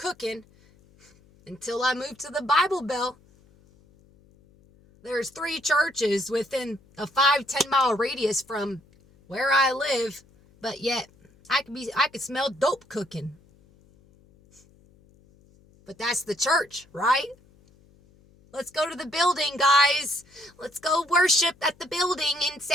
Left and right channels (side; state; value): left; noise; hum, 29 dB below the sound